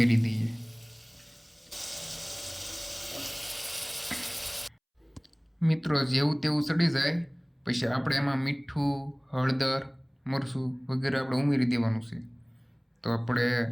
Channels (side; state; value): both; identical; correlation 1.00